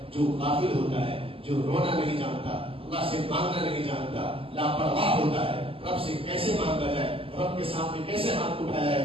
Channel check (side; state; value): left; late; 0.26 ms